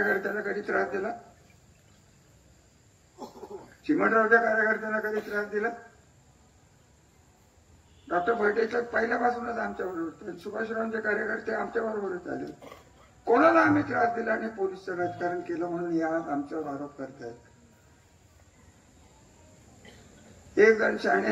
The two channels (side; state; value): both; identical; correlation 1.00